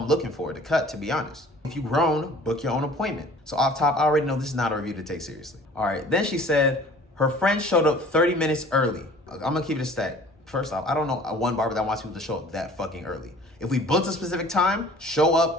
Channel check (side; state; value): both; normal; correlation 0.49